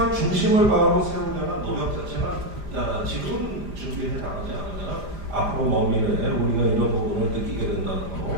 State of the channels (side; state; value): left; late; 5.0 ms